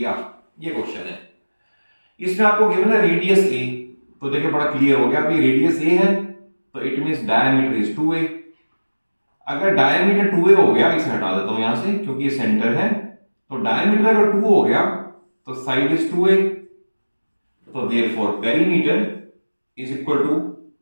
ये क्वेश्चन है। इसमें आपको गिवन है रेडियस a, तो देखिए बड़ा क्लियर हो गया, अभी रेडियस a है तो it means diameter is 2a। अगर डायमीटर 2a हो गया, इसे हटा देता हूं यहां से क्योंकि ये सेंटर है, तो डायमीटर अगर 2 हो गया तो साइड इज 2a, तो therefore perimeter is equal to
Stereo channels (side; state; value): both; inverted; correlation -1.00